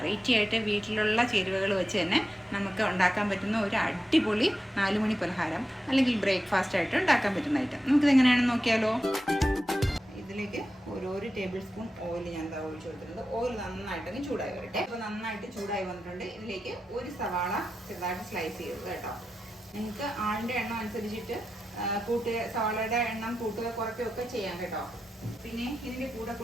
ആയിട്ട് വീട്ടിലുള്ള ചേരുവകൾ വെച്ച് തന്നെ നമുക്ക് ഉണ്ടാക്കാൻ പറ്റുന്ന ഒരു അടിപൊളി 4 മണി പലഹാരം അല്ലെങ്കിൽ ബ്രേക്ക്ഫാസ്റ്റ് ആയിട്ട് ഉണ്ടാക്കാൻ പറ്റുന്ന ഐറ്റം നമുക്കിത് എങ്ങനെയാണെന്ന് നോക്കിയാലോ. ഇതിലേക്ക് ഒരു ടേബിൾ സ്പൂൺ ഓയിൽ ഞാൻ ഒഴിച്ചു കൊടുത്തിട്ടുണ്ട്. ഓയിൽ നന്നായിട്ടൊന്ന് ചൂടായി വരട്ടെ. അപ്പോൾ നന്നായിട്ട് ചൂടായി വന്നിട്ടുണ്ട്. ഇതിലേക്ക് ഒരു സവാള ചെറുതായിട്ട് സ്ലൈസ് ചെയ്തത് കേട്ടോ. നിങ്ങൾക്ക് ആളിൻ്റെ എണ്ണം അനുസരിച്ചിട്ട് സവാളയുടെ എണ്ണം കൂട്ടുക കുറയ്ക്കുകയൊക്കെ ചെയ്യാം കേട്ടോ. പിന്നെ ഇതിൻ്റെ കൂടെ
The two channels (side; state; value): both; normal; correlation 0.90